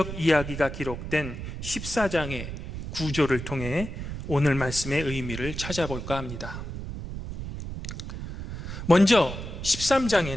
이야기가 기록된 14장의 구조를 통해 오늘 말씀의 의미를 찾아볼까 합니다. 먼저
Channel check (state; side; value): noise; right; rumble, 8 dB below the sound